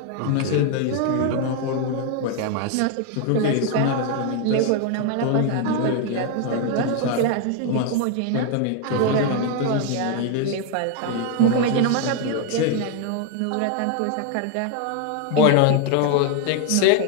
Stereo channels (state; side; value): different; both; correlation 0.01